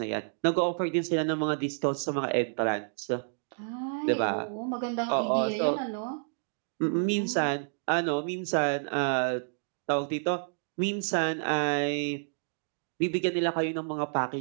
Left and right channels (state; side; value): silent; left; digital silence